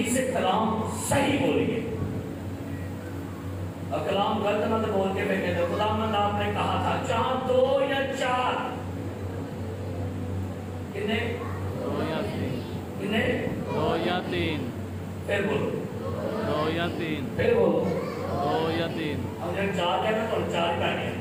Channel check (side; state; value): both; identical; correlation 1.00